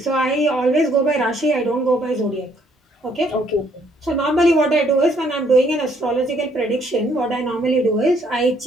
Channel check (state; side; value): normal; both; correlation 0.67